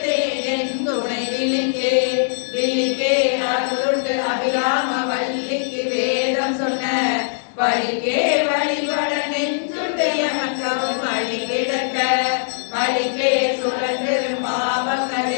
என் துணை விழிக்கே விழிக்கே அருளுண்டு அபிராமவல்லிக்கு வேதம் சொன்ன வழிக்கே வழிபட நெஞ்சுடைய மக்களும் வழி கிடக்க வழிக்கே சுழன்றிரும்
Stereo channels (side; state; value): right; silent; 61 dB below the other